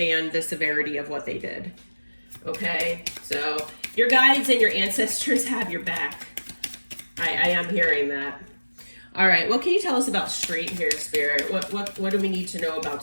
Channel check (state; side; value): inverted; both; correlation -1.00